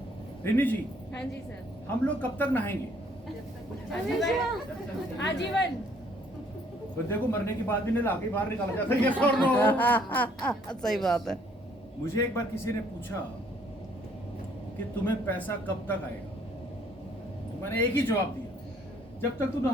रिनी जी, हाँ जी सर। हम लोग कब तक नहाएंगे? आजीवन। बंदे को मरने के बाद भी नहीं लाके बाहर निकाला जाता है, yes or no? सही बात है। मुझे एक बार किसी ने पूछा कि तुम्हें पैसा कब तक आएगा, तो मैंने एक ही जवाब दिया, जब तक तू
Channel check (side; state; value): both; normal; correlation 0.63